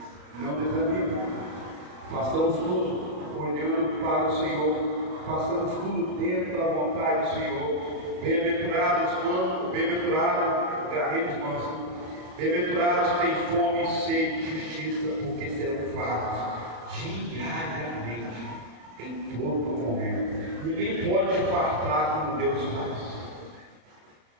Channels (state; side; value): late; left; 35 ms